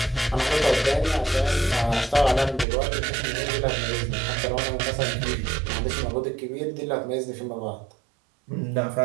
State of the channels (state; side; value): drops out; left; at 2.7 s